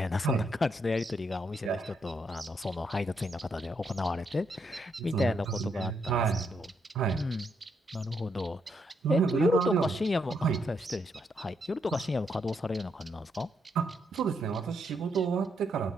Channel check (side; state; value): both; normal; correlation 0.77